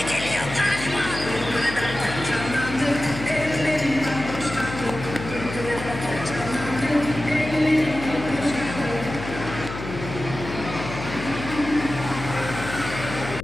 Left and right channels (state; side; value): noise; left; hum, 9 dB below the sound